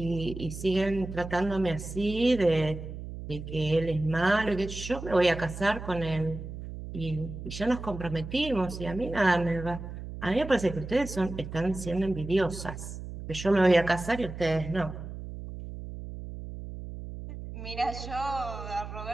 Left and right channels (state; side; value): noise; right; hum, 9 dB below the sound